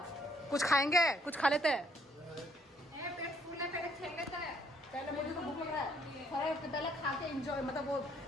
कुछ खाएंगे, कुछ खा लेते हैं। पेट फूल है, पहले खेल लेता है। पहले मुझे तो भूख लग रहा है, पहले खा के एंजॉय, मतलब वो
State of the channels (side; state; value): both; normal; correlation 0.67